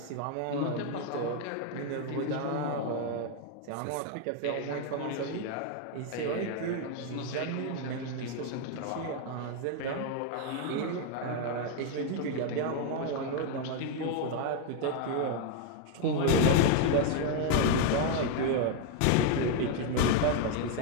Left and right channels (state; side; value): different; both; correlation 0.01